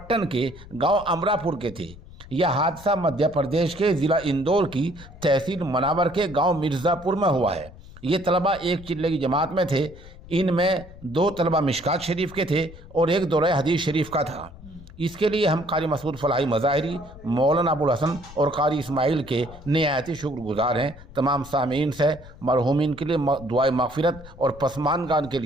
کے گاؤں امراپور کے تھے۔ یہ حادثہ مدھیہ پردیش کے ضلع اندور کی تحصیل مناور کے گاؤں مرزا پور میں ہوا ہے۔ یہ طلبہ ایک چلے کی جماعت میں تھے۔ ان میں 2 طلبہ مشکات شریف کے تھے اور ایک دورہ حدیث شریف کا تھا۔ اس کے لیے ہم قاری مسعود فلاحی مظاہری، مولانا ابو الحسن اور قاری اسماعیل کے نہایت شکر گزار ہیں۔ تمام سامعین سے مرحومین کے لیے دعائے مغفرت اور پسماندگان کے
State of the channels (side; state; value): left; noise; rumble, 18 dB below the sound